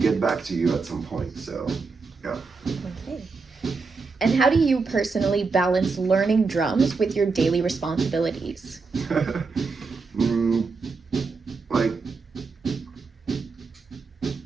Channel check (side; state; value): left; quieter; 4.4 dB